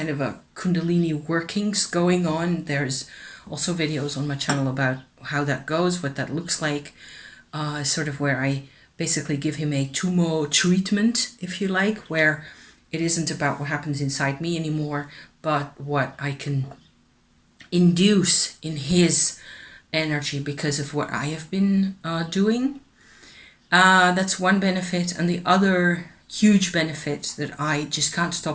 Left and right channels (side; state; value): both; identical; correlation 1.00